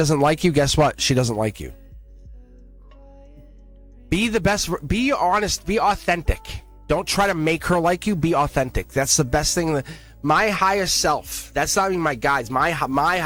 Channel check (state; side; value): identical; both; correlation 1.00